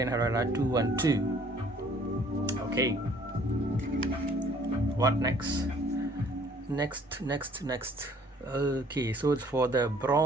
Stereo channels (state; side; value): normal; both; correlation 0.58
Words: Herrera 212. Okay, what next? Next. Okay, so it's for the